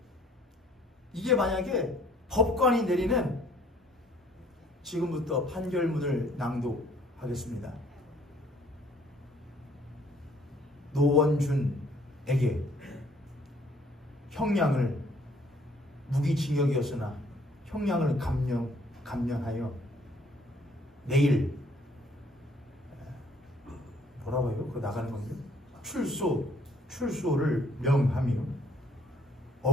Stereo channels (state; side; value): normal; both; correlation 0.61